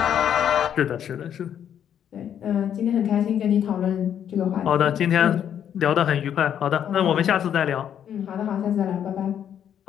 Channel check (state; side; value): quieter; right; 9.3 dB